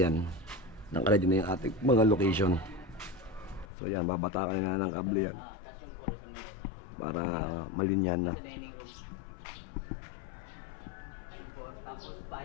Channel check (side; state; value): right; drops out; at 3.7 s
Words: yan. Nakaready na yung ating mga location. So yan, babataan na ng kable yan. Para malinyan na. Tapos